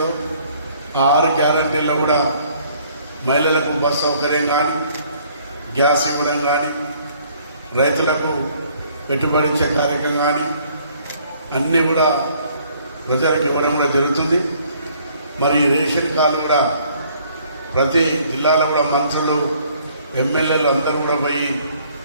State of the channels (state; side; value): inverted; both; correlation -0.61